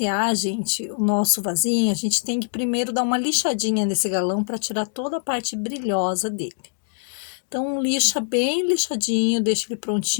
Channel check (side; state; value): right; silent; digital silence